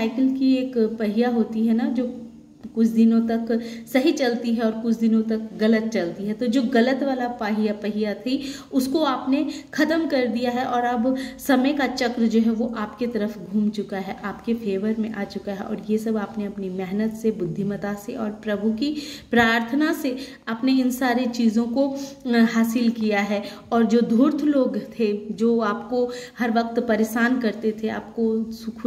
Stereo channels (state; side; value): identical; both; correlation 1.00